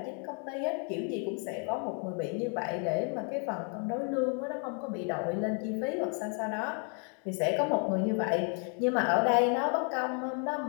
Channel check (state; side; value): quieter; right; 39.8 dB